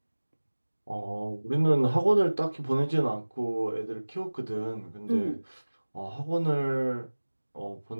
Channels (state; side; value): inverted; both; correlation -1.00